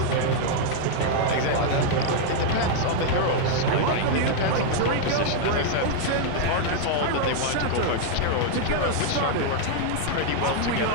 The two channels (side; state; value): both; different; correlation 0.00